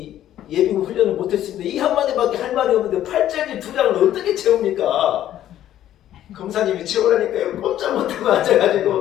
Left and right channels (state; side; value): quieter; right; 12.1 dB